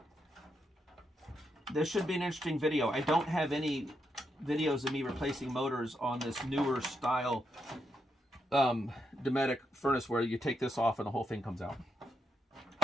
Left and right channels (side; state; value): both; normal; correlation 0.81